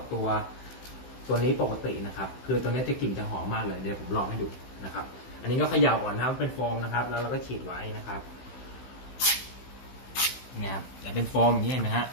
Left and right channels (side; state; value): right; late; 16 ms